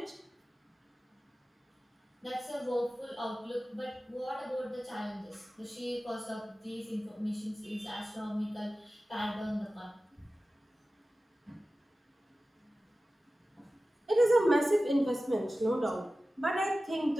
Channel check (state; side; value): normal; both; correlation 0.95